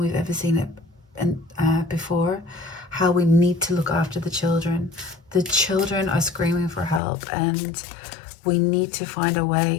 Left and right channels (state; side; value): drops out; right; at 7.0 s